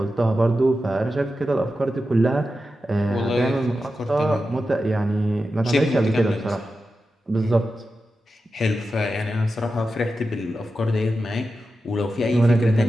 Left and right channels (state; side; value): normal; both; correlation 0.91